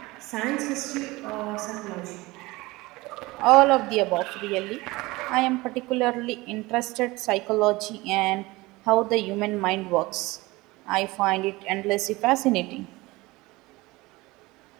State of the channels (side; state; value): left; quieter; 21.4 dB